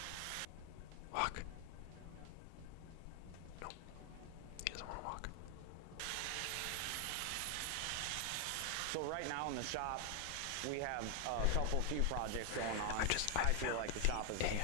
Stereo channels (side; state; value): both; different; correlation 0.00